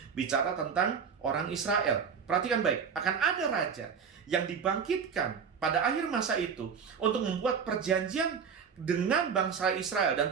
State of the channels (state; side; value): quieter; left; 6.5 dB